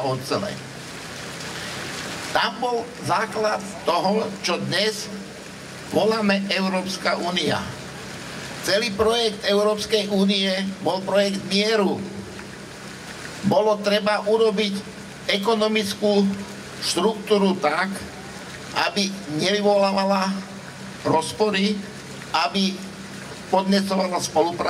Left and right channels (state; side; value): identical; both; correlation 1.00